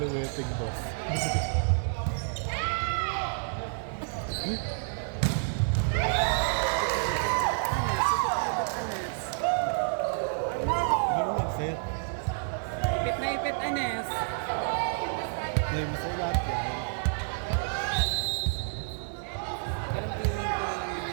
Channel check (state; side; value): silent; left; digital silence